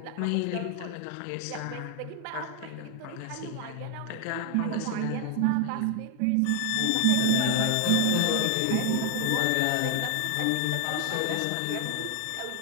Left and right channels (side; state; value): both; different; correlation 0.00